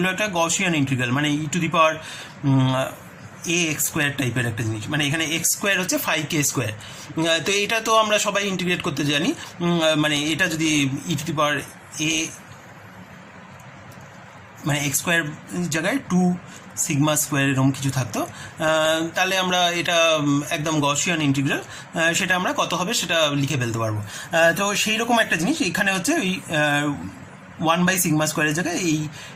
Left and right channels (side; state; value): both; identical; correlation 1.00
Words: একটা গসিয়ান ইন্টিগ্রাল, মানে e to the power a x square টাইপের একটা জিনিস, মানে এখানে এক্স স্কোয়ার হচ্ছে ফাই কে স্কোয়ার। তো এটা তো আমরা সবাই ইন্টিগ্রেট করতে জানি, মানে এটা যদি ই টু দি পাওয়ার এ মানে এক্স স্কোয়ার জায়গায় 2 সিগমা স্কোয়ার এরকম কিছু থাকতো, তাহলে আমরা এটা একদম গসিয়ান ইন্টিগ্রাল, সেটা আমরা কত হবে সেটা লিখে ফেলতে পারবো। তো সেই রকম একটা জিনিস এখানে হচ্ছে ওই 1 বাই সিগমা স্কোয়ারের জায়গায় এই